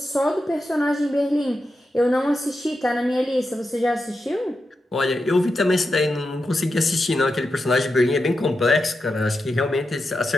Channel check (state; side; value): normal; both; correlation 0.89